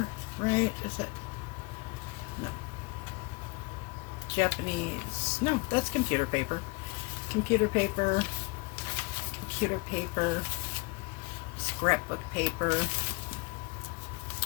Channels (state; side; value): quieter; right; 26.6 dB